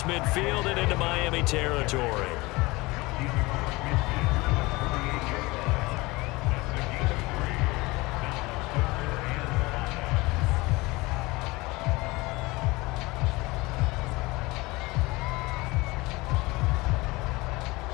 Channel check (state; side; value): quieter; right; 22.5 dB